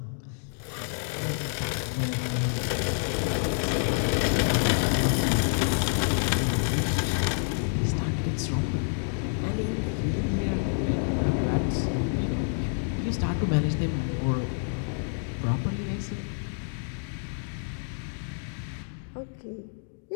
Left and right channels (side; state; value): right; silent; 59 dB below the other